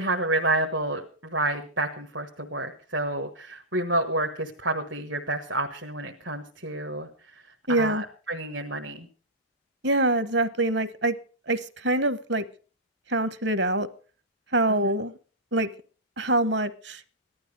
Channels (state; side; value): normal; both; correlation -0.15